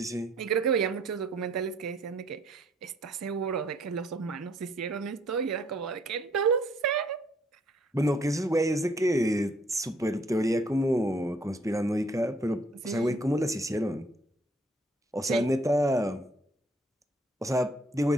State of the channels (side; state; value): both; normal; correlation 0.64